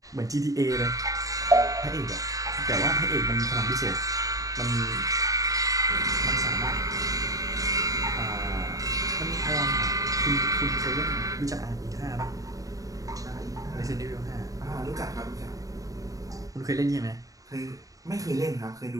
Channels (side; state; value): left; late; 0.17 ms